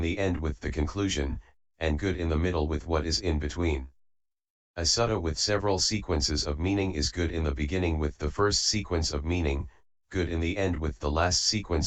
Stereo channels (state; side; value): identical; both; correlation 1.00